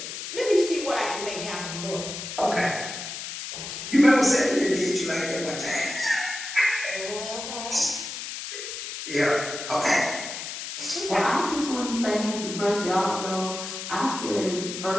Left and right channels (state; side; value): noise; left; hiss, 7 dB below the sound